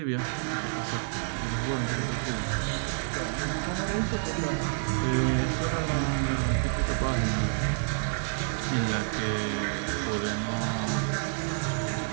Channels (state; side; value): silent; left; 59 dB below the other